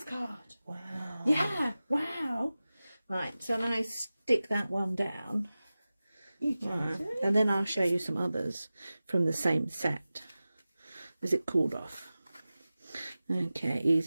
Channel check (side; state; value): both; inverted; correlation -0.96